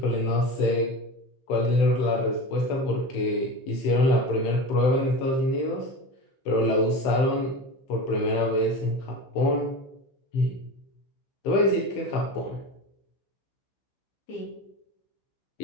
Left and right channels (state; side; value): late; right; 15 ms